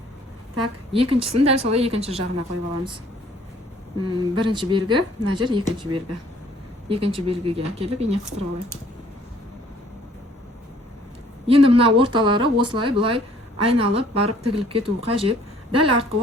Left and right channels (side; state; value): both; normal; correlation 0.58